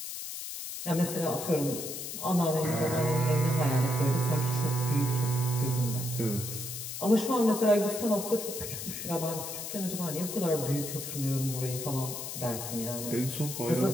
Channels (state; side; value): noise; left; hiss, 7 dB below the sound